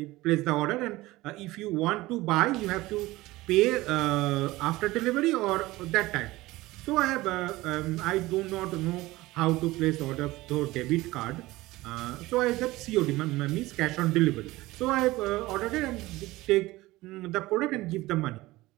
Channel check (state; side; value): quieter; left; 19.0 dB